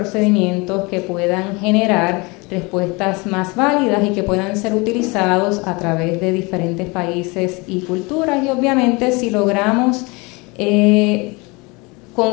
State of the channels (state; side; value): quieter; right; 26.8 dB